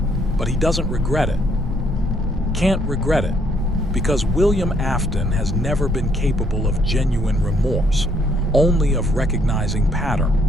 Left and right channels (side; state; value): both; normal; correlation 0.68